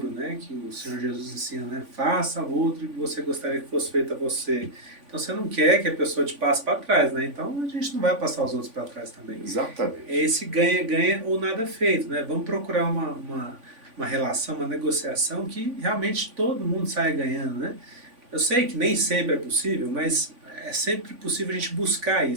né? Que o Senhor Jesus ensina, né? Faça ao outro o que você gostaria que fosse feito a você. Então você não quer que a pessoa te passe para trás, né? Então a gente não vai passar os outros para trás também. Exatamente. É esse ganha-ganha ou nada feito, né? Vamos procurar uma relação, uma negociação que realmente todo mundo saia ganhando, né? Eu sei que nem sempre é possível, mas é sempre possível a gente buscar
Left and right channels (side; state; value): left; late; 3.5 ms